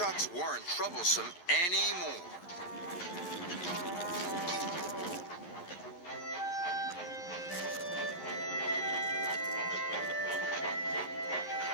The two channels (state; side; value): late; right; 11 ms